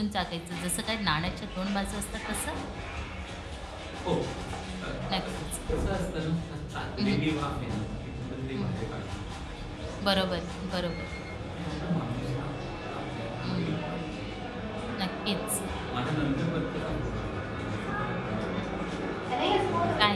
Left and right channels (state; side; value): identical; both; correlation 1.00